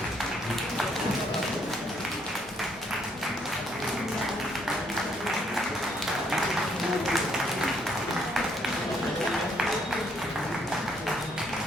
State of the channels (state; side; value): normal; both; correlation 0.69